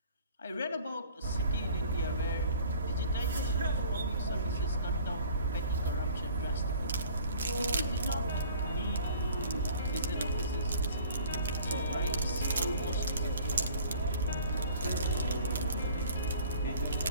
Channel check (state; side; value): inverted; both; correlation -0.50